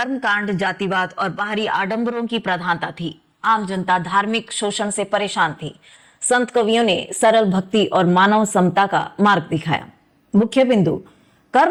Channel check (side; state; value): both; identical; correlation 1.00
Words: जातिवाद और बाहरी आडंबरों की प्रधानता थी। आम जनता धार्मिक शोषण से परेशान थी। संत कवियों ने सरल भक्ति और मानव समता का मार्ग दिखाया। मुख्य बिंदु: